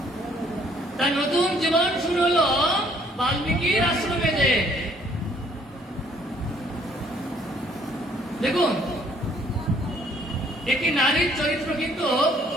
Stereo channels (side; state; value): both; normal; correlation 0.62